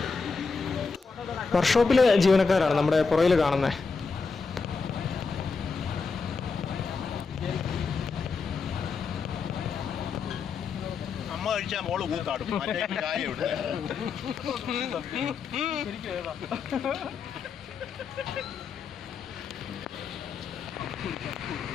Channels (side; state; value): right; quieter; 4.9 dB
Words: വർക്ക്ഷോപ്പിലെ ജീവനക്കാരാണ് നമ്മുടെ പുറയിൽ കാണുന്നത്. അമ്മ കഴിച്ചാൽ മോള് കൂത്താടും. ചായ ഇവിടെ